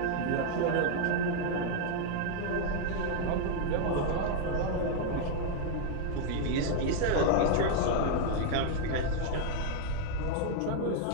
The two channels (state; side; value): different; both; correlation 0.00